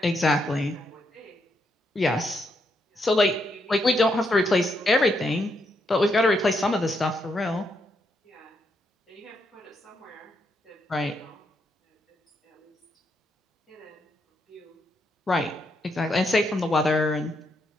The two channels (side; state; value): both; normal; correlation 0.79